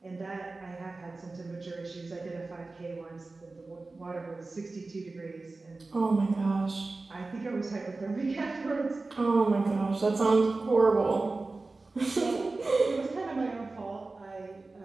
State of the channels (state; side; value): quieter; left; 3.5 dB